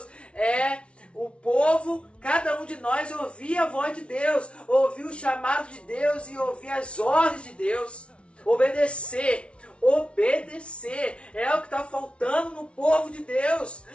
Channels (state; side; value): late; right; 0.060 ms